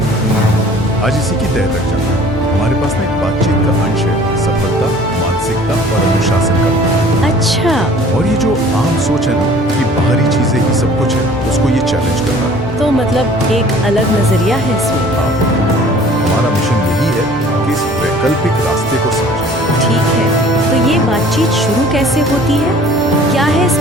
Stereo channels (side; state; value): both; normal; correlation 0.50